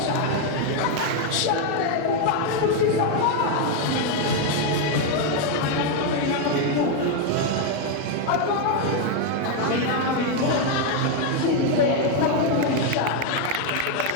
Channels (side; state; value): both; different; correlation 0.01